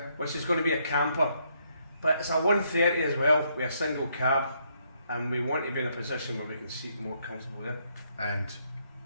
Which is going to be a camper, but it's a 130 as well with a single cab, and we want to be in a position where we can seat more comfortably in. And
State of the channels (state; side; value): inverted; both; correlation -0.73